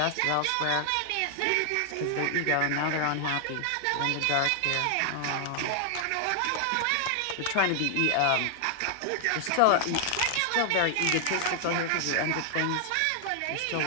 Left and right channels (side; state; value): both; different; correlation 0.00